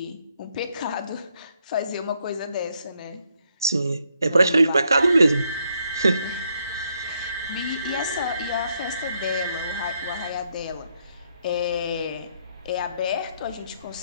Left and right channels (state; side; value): inverted; both; correlation -0.74